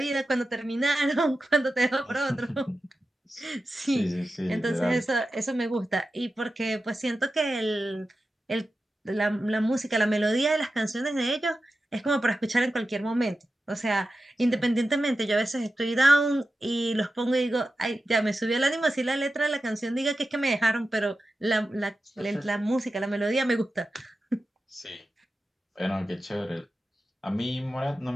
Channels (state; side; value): normal; both; correlation 0.92